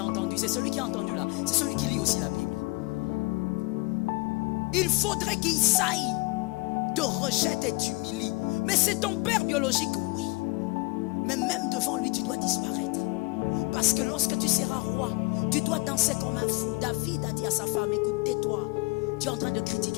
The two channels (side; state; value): right; quieter; 25.7 dB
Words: entendu. C'est celui qui a entendu là. C'est celui qui lit aussi la Bible. Il faudrait qu'il saille, te rejette et t'humilie. Mais c'est ton père biologique, oui. Mais même devant lui, tu dois disparaître. Parce que lorsque tu seras roi, tu dois danser comme un fou. David a dit à sa femme, écoute, tais-toi. Tu es en train de